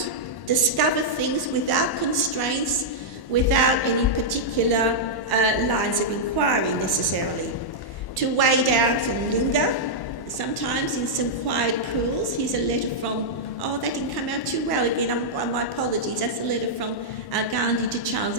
discover things without constraints, without any particular lines of inquiry necessarily. To wade out and linger, sometimes in some quiet pools. Here's a letter from, oh, that didn't come out too well again, my apologies. That's a letter from Gandhi to Charles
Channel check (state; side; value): late; right; 1.1 ms